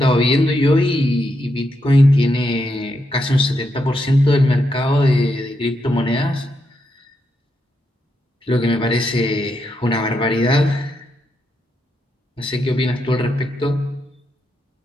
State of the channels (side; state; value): both; normal; correlation 0.82